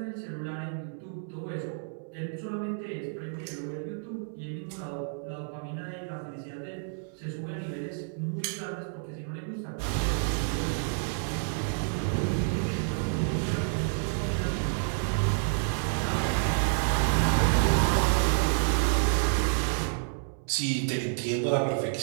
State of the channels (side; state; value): left; silent; 58 dB below the other